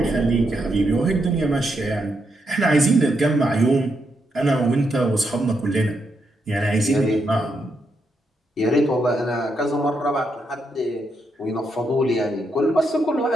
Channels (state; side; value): normal; both; correlation 0.80